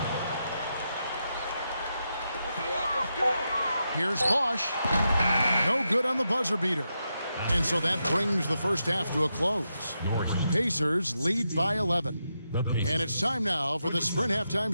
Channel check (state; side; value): inverted; both; correlation -0.86